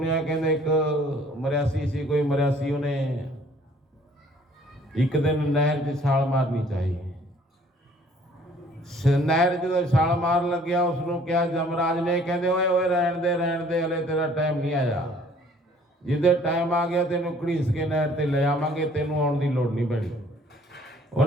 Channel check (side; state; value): both; normal; correlation 0.57